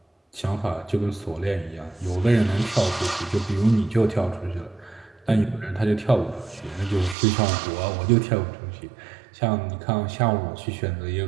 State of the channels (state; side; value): drops out; left; at 7.2 s